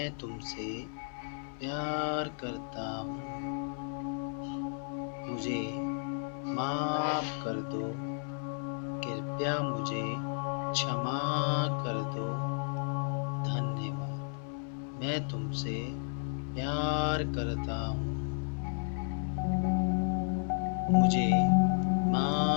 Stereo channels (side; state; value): right; silent; 56 dB below the other